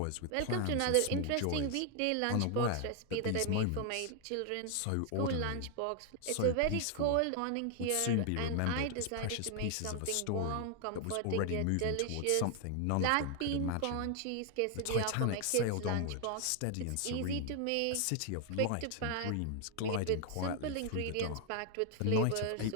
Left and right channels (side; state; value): both; different; correlation 0.00